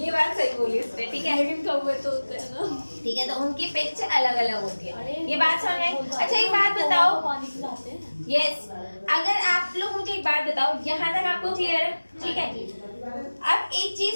बात सही बोली इसने, ठीक है। लेकिन कौवे तो होते हैं ना, ठीक है, तो उनकी पिच अलग अलग होती है, अरे ये बात समझ में आई। अच्छा एक बात बताओ, पानी पिलाते हैं। यस, अगर आप लोग मुझे एक बात बताओ, यहाँ तक आपको क्लियर है, ठीक है। अब एक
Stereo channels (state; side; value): inverted; both; correlation -1.00